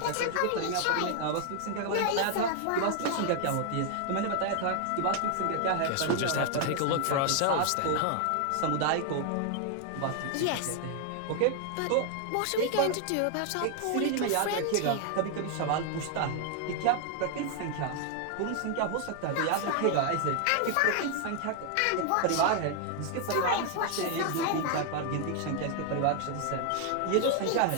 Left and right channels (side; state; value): both; different; correlation 0.00